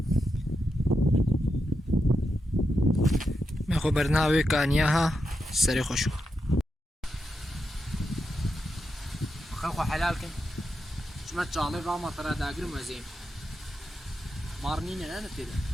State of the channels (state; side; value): normal; both; correlation 0.86